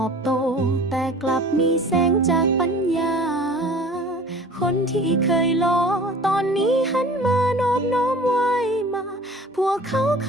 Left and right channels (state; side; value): normal; both; correlation 0.44